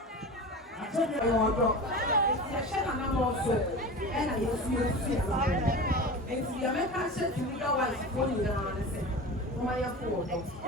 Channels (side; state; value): both; normal; correlation 0.31